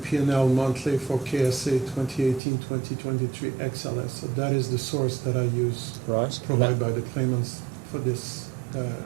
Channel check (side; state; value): left; drops out; at 2.4 s